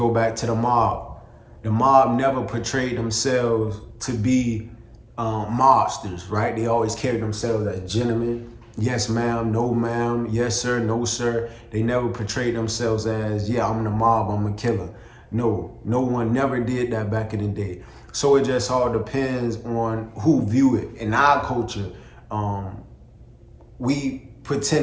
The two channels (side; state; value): both; identical; correlation 1.00